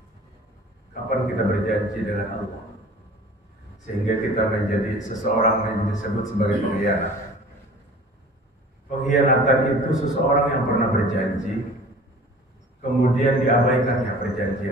Kapan kita berjanji dengan Allah sehingga kita menjadi seseorang yang disebut sebagai pengkhianat? Pengkhianatan itu seseorang yang pernah berjanji kemudian diabaikannya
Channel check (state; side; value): normal; both; correlation 0.44